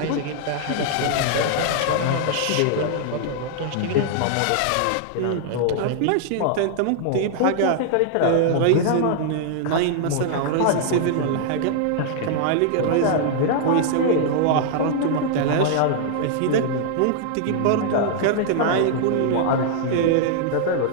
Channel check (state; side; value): different; both; correlation -0.01